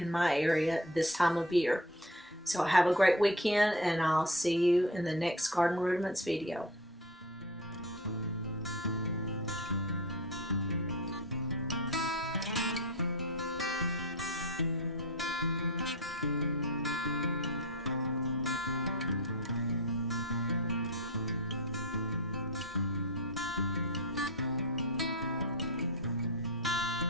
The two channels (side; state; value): both; normal; correlation 0.31